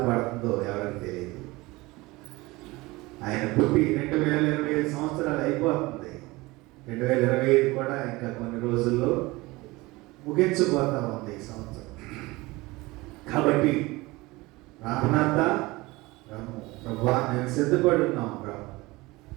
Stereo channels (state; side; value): quieter; left; 21.6 dB